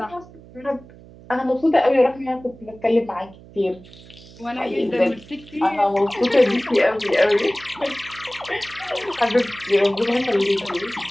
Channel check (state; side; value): noise; right; hum, 21 dB below the sound